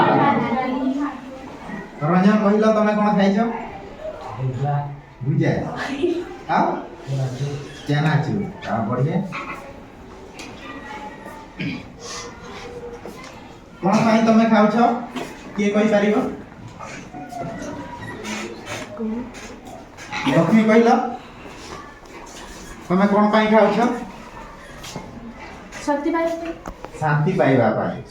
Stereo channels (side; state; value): both; identical; correlation 1.00